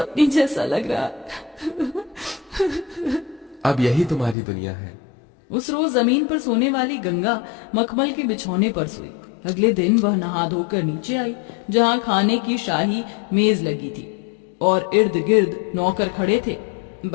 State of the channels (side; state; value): right; drops out; at 4.4 s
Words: जैसा लग रहा। अब यही तुम्हारी दुनिया है। उस रोज जमीन पर सोने वाली गंगा मखमल के बिछौने पर सोई। अगले दिन वह नहा धोकर नीचे आई, जहाँ खाने की शाही मेज लगी थी और इर्द गिर्द नौकर खड़े थे।